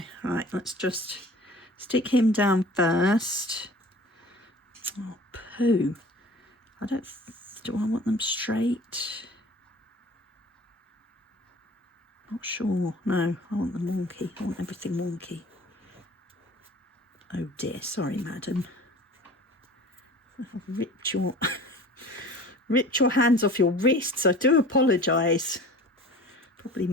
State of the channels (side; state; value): both; normal; correlation 0.43